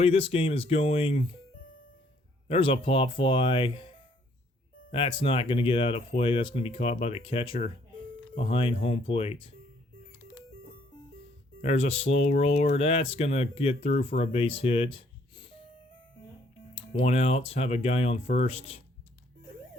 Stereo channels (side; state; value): both; normal; correlation 0.65